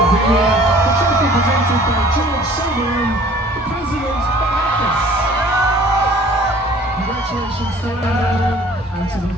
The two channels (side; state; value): both; normal; correlation 0.51